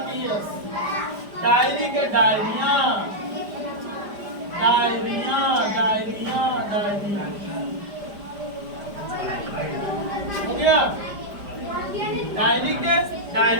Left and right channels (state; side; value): late; left; 5.0 ms